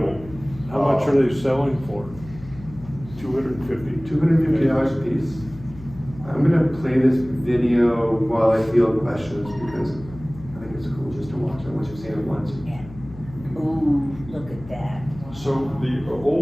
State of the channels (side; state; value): left; noise; hum, 17 dB below the sound